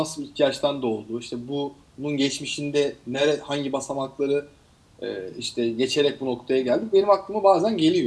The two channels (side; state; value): both; identical; correlation 1.00